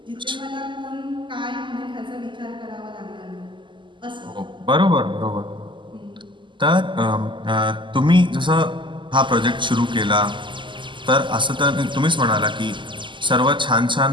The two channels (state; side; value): late; left; 0.24 ms